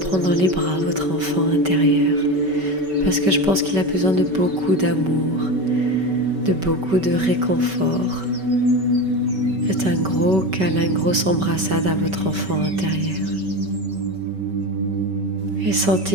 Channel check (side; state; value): left; late; 5.2 ms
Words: dans les bras votre enfant intérieur parce que je pense qu'il a besoin de beaucoup d'amour, de beaucoup de réconfort. Faites un gros câlin, une grosse embrassade à votre enfant intérieur. Et